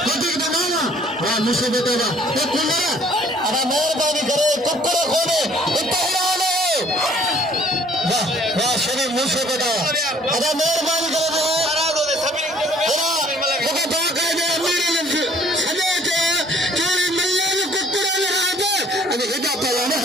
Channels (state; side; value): normal; both; correlation 0.58